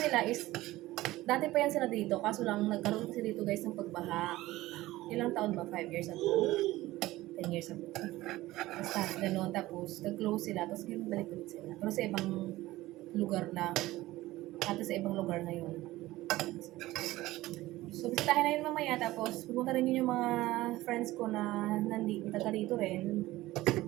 is, dati pa yan sila dito, kaso lang nagkaroon kasi dito guys ng pagbaha. Ilang taon ba? 5 years ago? 10 years ago. Basta, gano'n. Tapos, nag-close sila, tapos ganun balik ulit sila. Pero sa ibang lugar na, sa ibang lugar na yun. So, bisitahin na yun mamaya. Tapos, pupunta rin yun yung mga friends ko na taga dito rin.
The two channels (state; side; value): quieter; left; 17.4 dB